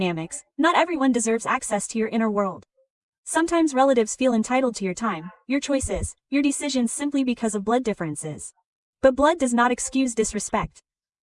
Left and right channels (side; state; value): both; identical; correlation 1.00